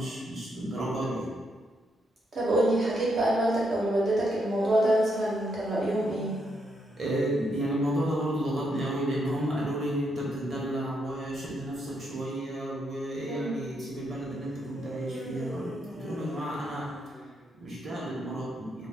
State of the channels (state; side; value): normal; both; correlation 0.78